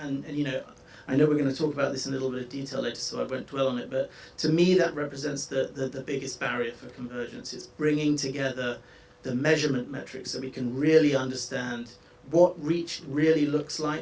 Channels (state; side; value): identical; both; correlation 1.00